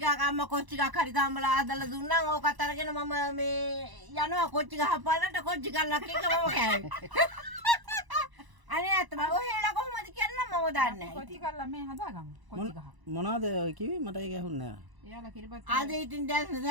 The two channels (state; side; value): late; left; 1.0 ms